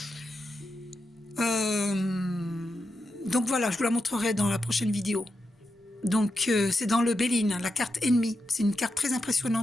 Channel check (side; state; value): both; normal; correlation 0.87